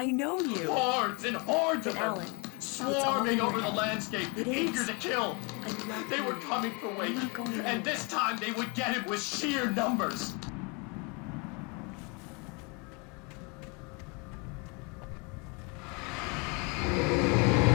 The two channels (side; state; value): right; quieter; 31.1 dB